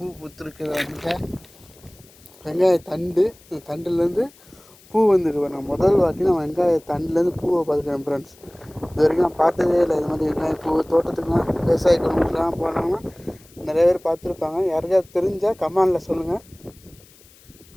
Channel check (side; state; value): left; noise; hiss, 26 dB below the sound